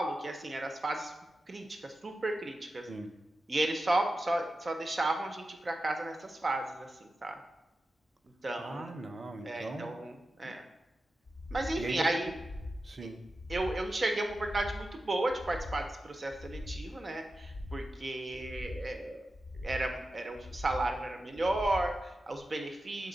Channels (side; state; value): both; normal; correlation 0.92